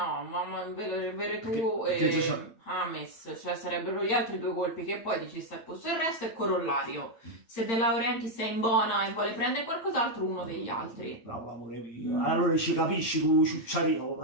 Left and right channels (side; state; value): right; late; 8.8 ms